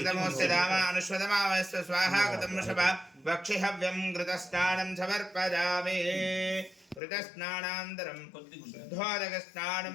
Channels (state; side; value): drops out; right; at 7.0 s